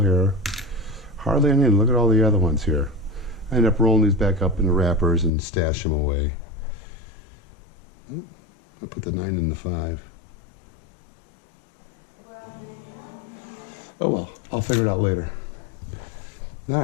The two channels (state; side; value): drops out; right; at 5.3 s